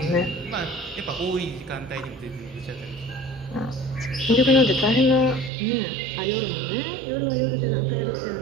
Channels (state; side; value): drops out; left; at 5.5 s